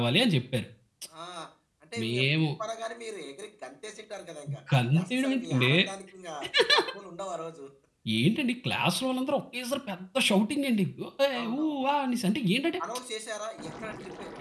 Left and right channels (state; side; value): identical; both; correlation 1.00